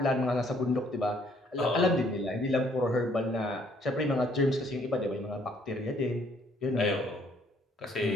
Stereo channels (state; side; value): normal; both; correlation 0.64